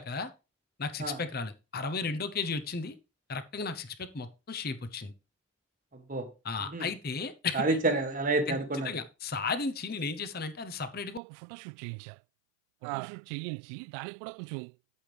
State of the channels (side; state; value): left; drops out; at 11.2 s